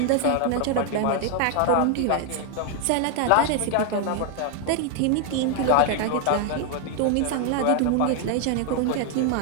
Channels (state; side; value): different; both; correlation 0.00